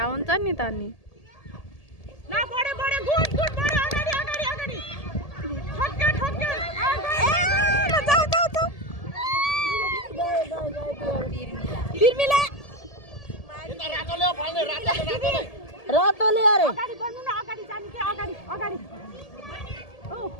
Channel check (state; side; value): late; right; 1.7 ms